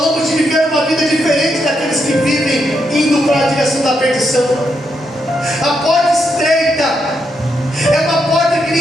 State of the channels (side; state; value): both; normal; correlation 0.80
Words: de viver uma vida diferente daqueles que vivem indo para a direção da perdição. A porta estreita é uma porta que